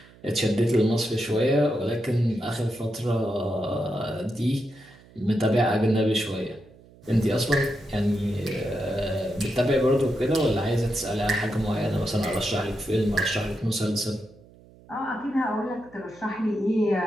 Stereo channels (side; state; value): right; noise; hum, 25 dB below the sound